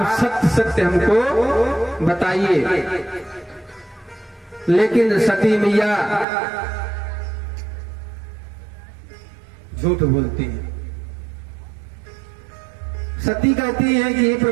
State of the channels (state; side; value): drops out; left; at 6.2 s